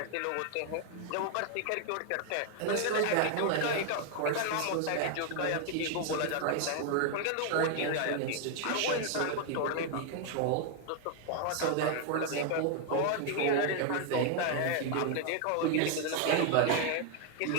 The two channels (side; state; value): both; different; correlation 0.00